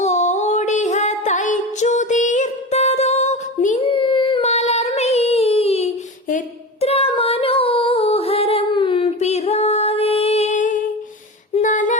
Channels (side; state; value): both; normal; correlation 0.27